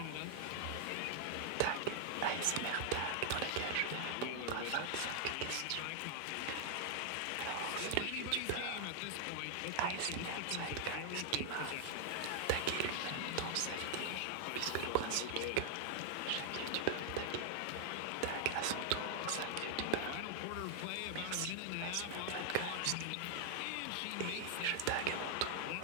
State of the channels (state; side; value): different; both; correlation 0.00